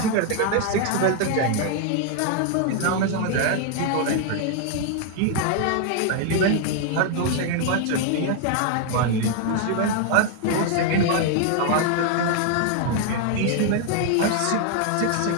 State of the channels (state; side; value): different; both; correlation 0.00